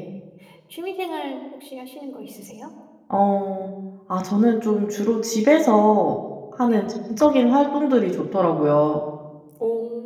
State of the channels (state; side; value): identical; both; correlation 1.00